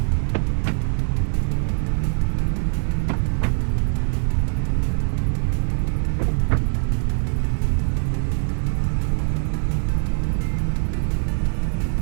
Mas eu não vou de mão abanando, não. Rompedor hidráulico, carrinho reforçado, foice braba. Vamos ver quem ri por último nessa história.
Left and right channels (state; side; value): silent; left; 64 dB below the other